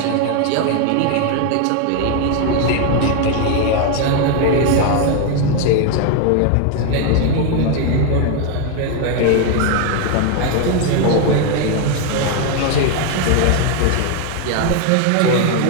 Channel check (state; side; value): different; both; correlation 0.01